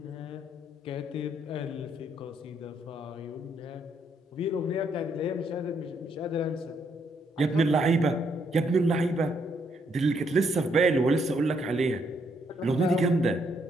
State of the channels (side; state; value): both; normal; correlation 0.73